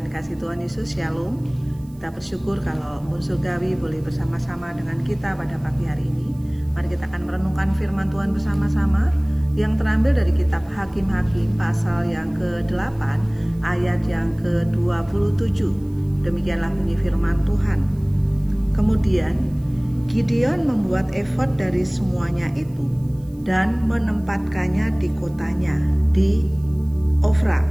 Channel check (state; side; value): noise; right; hiss, 30 dB below the sound